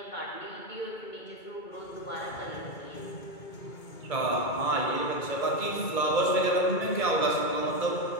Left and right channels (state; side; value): late; right; 2.3 ms